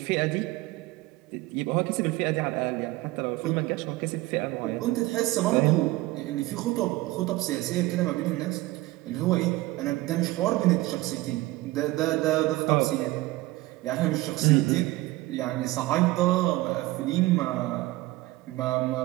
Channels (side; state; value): left; quieter; 19.0 dB